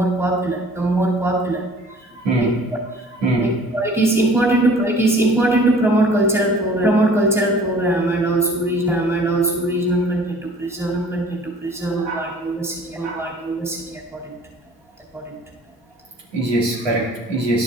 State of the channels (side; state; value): both; normal; correlation 0.50